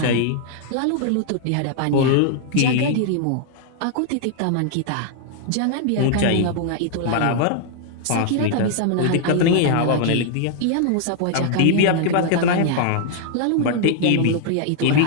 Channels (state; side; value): different; both; correlation 0.00